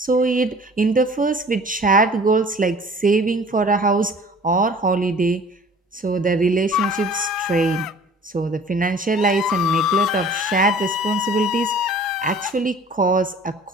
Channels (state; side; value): normal; both; correlation 0.48